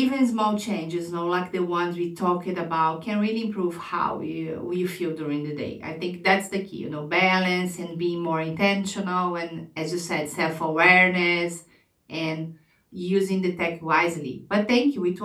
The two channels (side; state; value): both; identical; correlation 1.00